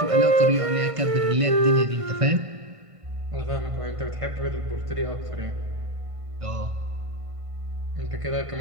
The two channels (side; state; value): left; late; 1.5 ms